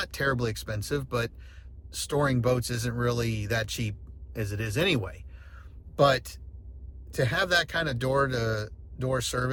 terribly expensive, but storing boats isn't really that cheap as it is anyway. But to have that kind of door-to-door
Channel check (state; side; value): identical; both; correlation 1.00